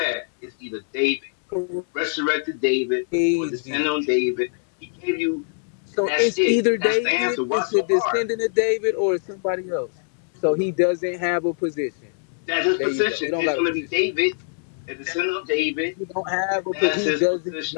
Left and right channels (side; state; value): right; silent; 63 dB below the other